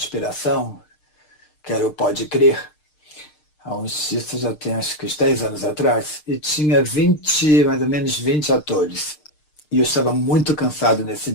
que era o Pode Crer, isso já tem acho que uns 10 anos atrás, e tinha mais ou menos 20 atores. E eu estava muito cansado nesse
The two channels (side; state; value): right; late; 6.6 ms